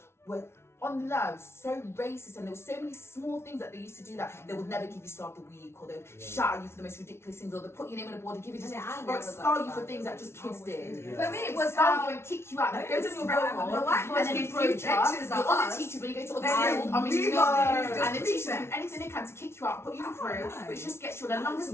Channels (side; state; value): right; late; 0.12 ms